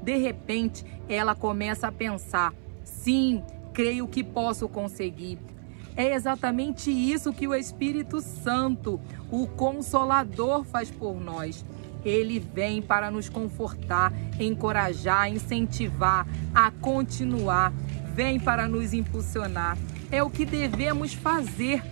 De repente, ela começa a pensar: sim, creio que posso conseguir. É exatamente isso que o Espírito Santo, o Consolador, faz por nós. Ele vem para nos confortar, encorajar, incentivar a continuar. Vem para nos impulsionar. É o que devemos fazer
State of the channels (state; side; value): silent; left; 59 dB below the other